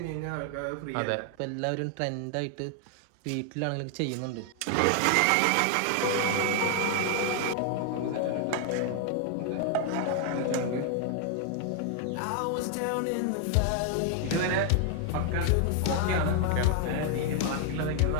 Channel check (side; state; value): both; different; correlation 0.00